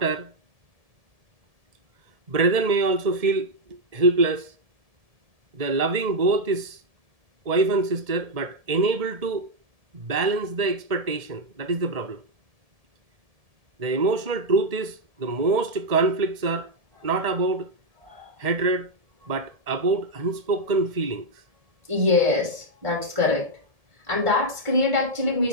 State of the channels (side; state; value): left; late; 1.7 ms